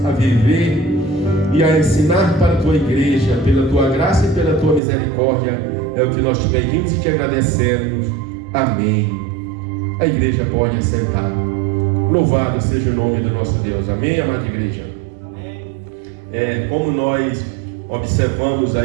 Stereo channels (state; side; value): drops out; left; at 4.8 s